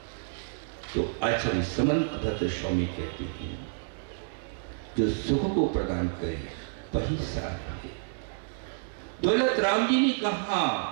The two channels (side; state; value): left; silent; 58 dB below the other